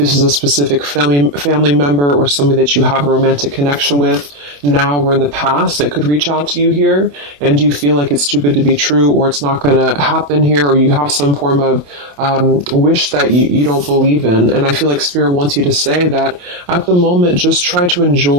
is a specific family member or somebody that you have a romantic connection with now or in the past that could reach out to you here, and you feel like it's too good to be true, or it's not going to happen here, or you have some form of wish that you don't believe in. And I feel like Spirit wants you to say that at the moment, just try to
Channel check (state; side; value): late; left; 28 ms